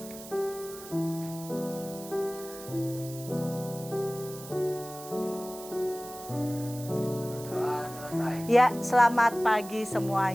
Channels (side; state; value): right; noise; hiss, 15 dB below the sound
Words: Ya, selamat pagi